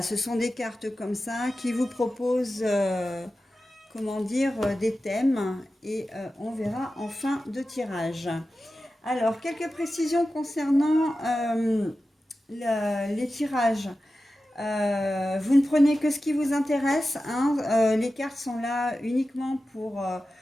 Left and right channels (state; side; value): normal; both; correlation 0.93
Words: ce sont des cartes comme ça qui vous proposent des thèmes et on verra en fin de tirage. Alors, quelques précisions concernant les tirages. Vous ne prenez que ce qui vous intéresse. Les cartes sont là uniquement pour